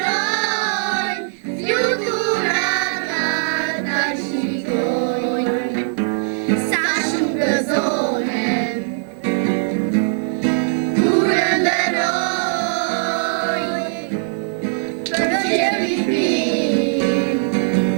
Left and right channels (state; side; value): silent; left; 66 dB below the other